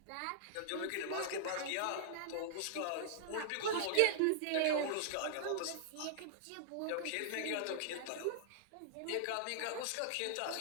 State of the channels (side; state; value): both; different; correlation -0.01